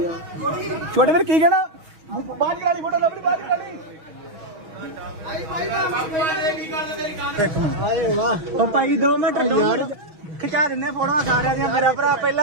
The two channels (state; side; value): late; left; 6.3 ms